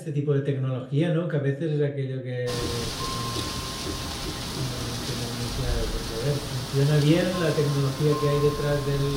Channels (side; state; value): both; identical; correlation 1.00